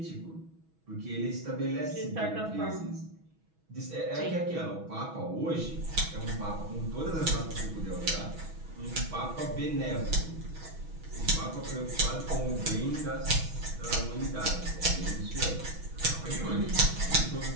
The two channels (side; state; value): left; late; 6.2 ms